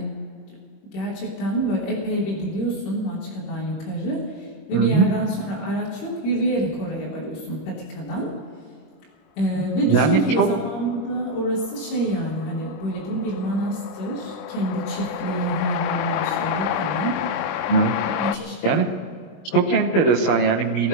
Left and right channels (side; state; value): right; late; 26 ms